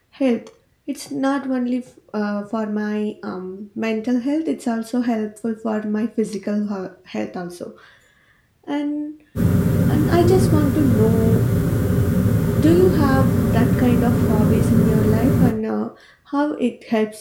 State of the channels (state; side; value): identical; both; correlation 1.00